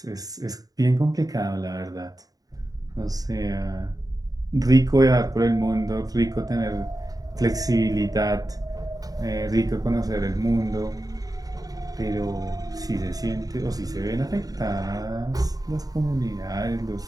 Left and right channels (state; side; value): late; left; 0.18 ms